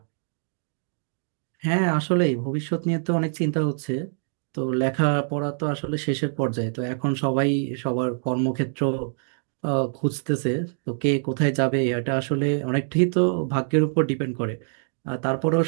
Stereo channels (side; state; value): left; silent; digital silence